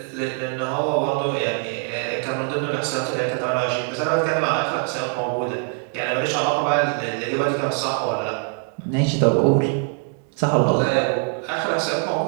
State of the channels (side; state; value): left; quieter; 38.0 dB